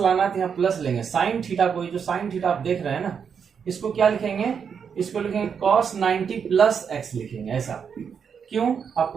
है तो यहाँ प्लस लेंगे। साइन थीटा को, जो साइन थीटा आप देख रहे हैं ना, इसको क्या लिखेंगे? इसको लिखेंगे cos 90 प्लस एक्स लिखेंगे। ऐसा क्यों,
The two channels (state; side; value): quieter; left; 6.8 dB